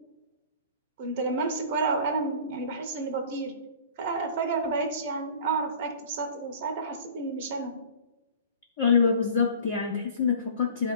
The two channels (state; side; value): inverted; both; correlation -0.44